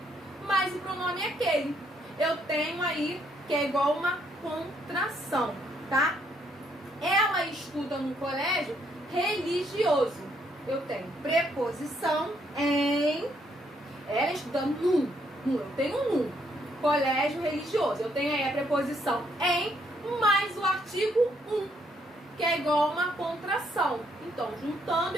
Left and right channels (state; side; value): normal; both; correlation 0.71